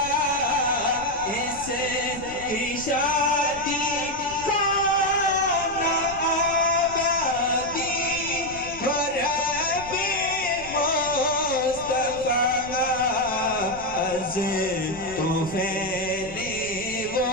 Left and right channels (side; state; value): left; noise; rumble, 16 dB below the sound